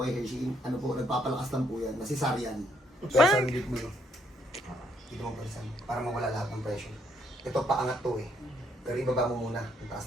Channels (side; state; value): both; normal; correlation 0.71